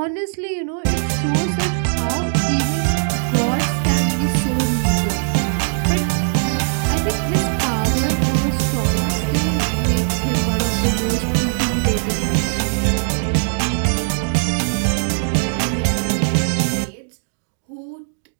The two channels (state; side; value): silent; left; digital silence